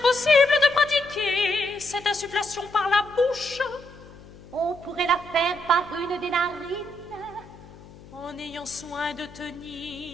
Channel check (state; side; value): noise; left; hum, 20 dB below the sound